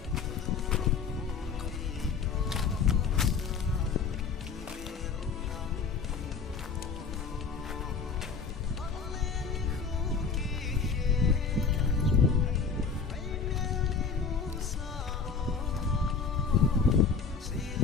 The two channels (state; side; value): quieter; right; 5.5 dB